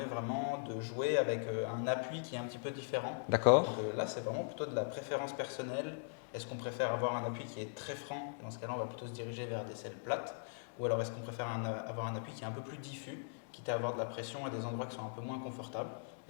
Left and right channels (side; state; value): right; silent; digital silence